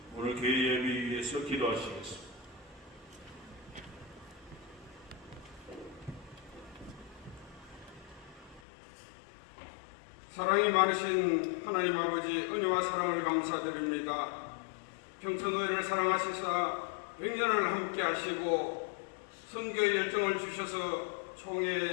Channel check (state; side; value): drops out; right; at 8.6 s